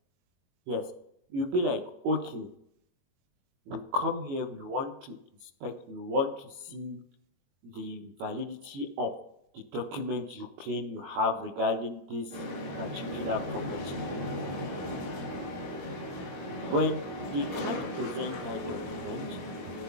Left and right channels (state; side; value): late; left; 22 ms